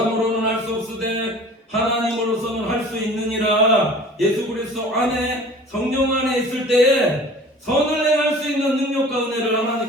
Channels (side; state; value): both; normal; correlation 0.45